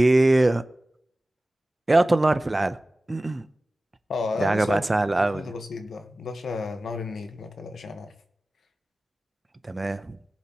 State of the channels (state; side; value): normal; both; correlation 0.97